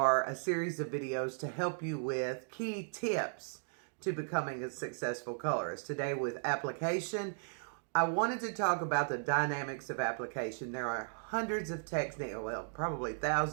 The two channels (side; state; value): left; silent; digital silence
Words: a series of videos to help you with key tips to becoming a successful colorist. Today with application, I wanted to talk about the dynamics of application. There are hundreds of techniques, well, probably